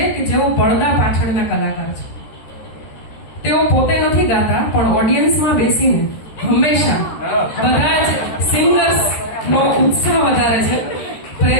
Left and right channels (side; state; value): right; late; 13 ms